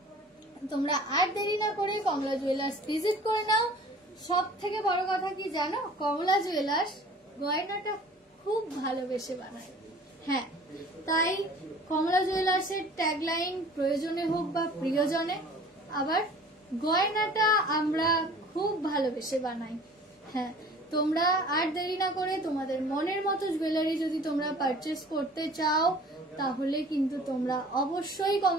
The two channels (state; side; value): normal; both; correlation 0.47